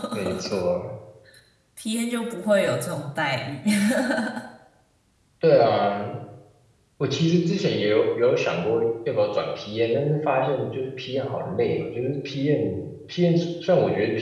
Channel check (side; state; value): both; identical; correlation 1.00